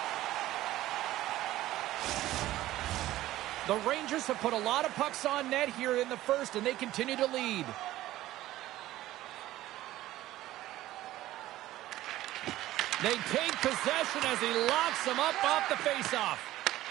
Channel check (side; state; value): left; quieter; 15.3 dB